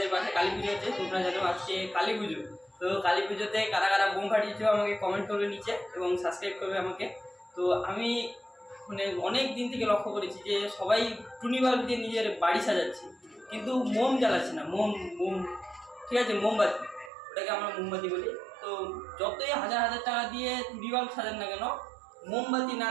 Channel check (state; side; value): drops out; left; at 17.1 s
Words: পাশে কালী পুজো হচ্ছে, তোমরা জানো আজকে কালী পুজো। তো কালী পুজোতে কারা কারা বোম ফাটিয়েছো আমাকে কমেন্ট করবে নিচে এবং সাবস্ক্রাইব করবে আমাকে। তো আমি মানে অনেক দিন থেকে লক্ষ্য করেছি যে সবাই টুনি বাল্ব দিয়ে নিজের বাড়ি সাজাচ্ছে, কিন্তু মোম জ্বালাচ্ছে না। মোম মোম ঠিক আছে, মোমবাতি, ওটাকে আমরা মোমবাতি বলি। তো যতই হাজার হাজার টাকা দিয়ে টুনি বাল্ব সাজান না কেন, মোমবাতি না